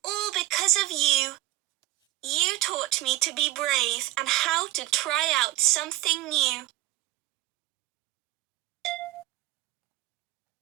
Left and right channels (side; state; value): left; quieter; 16.5 dB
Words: all because of you. You taught me to be brave and how to try out something new."